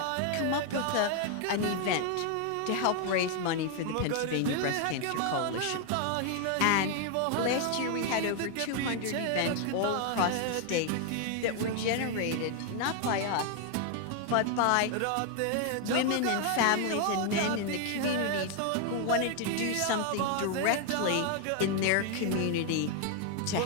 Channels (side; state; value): both; different; correlation 0.00